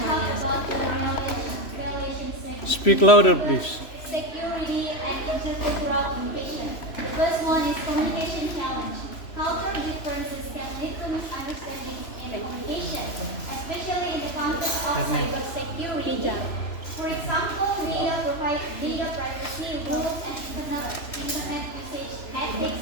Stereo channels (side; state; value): right; late; 3.0 ms